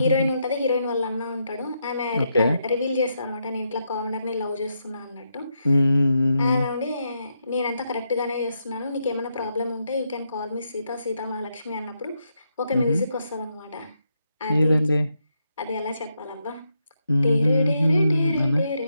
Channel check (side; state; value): both; inverted; correlation -0.82